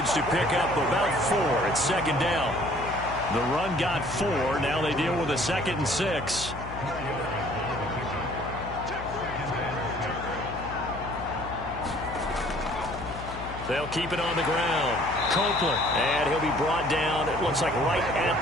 to pick up about 4 at 2nd down. The run got 4. Now they deal with a 2nd and 6. They'll keep it on the ground. Copeland. And he'll be brought down, it looks like right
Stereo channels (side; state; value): left; noise; hum, 11 dB below the sound